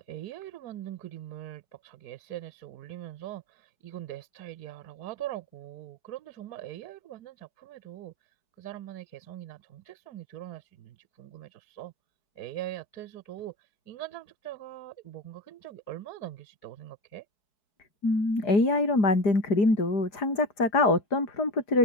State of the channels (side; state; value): right; late; 5.0 ms